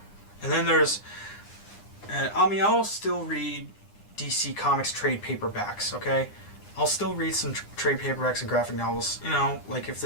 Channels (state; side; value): late; right; 9.8 ms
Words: then there's, and I mean, I'll still read DC Comics trade paperbacks, okay? I'll still read some trade paperbacks and graphic novels, you know, like if